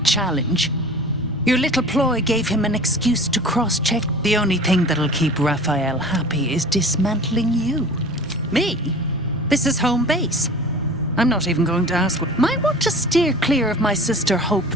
Your little ploy gave him an excuse to cross-check. The only thing that'll keep Raphael happy is dismantling you. Me? This is home base. I'm not even going to ask. Might want to steer clear of my sister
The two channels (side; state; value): both; normal; correlation 0.41